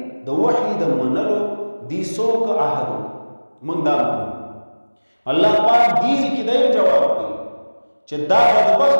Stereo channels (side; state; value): both; inverted; correlation -1.00